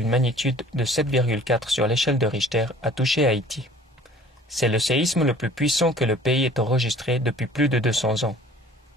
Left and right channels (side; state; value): both; normal; correlation 0.50